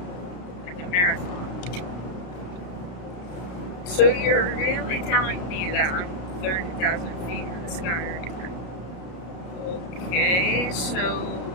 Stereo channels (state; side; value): late; right; 33 ms